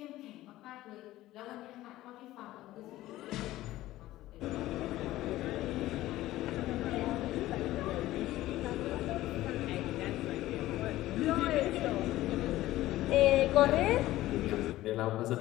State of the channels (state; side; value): quieter; right; 15.9 dB